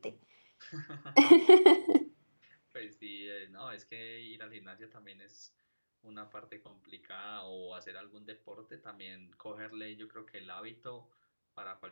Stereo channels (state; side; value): inverted; both; correlation -1.00